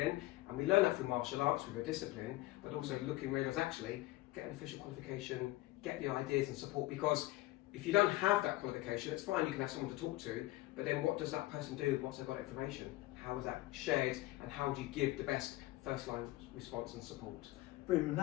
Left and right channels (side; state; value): right; quieter; 18.4 dB